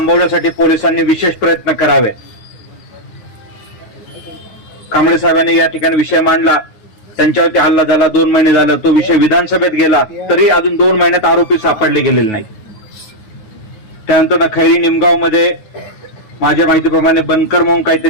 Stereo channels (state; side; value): late; right; 9.4 ms